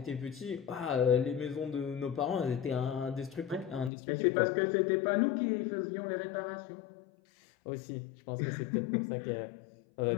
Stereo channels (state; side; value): drops out; right; at 3.9 s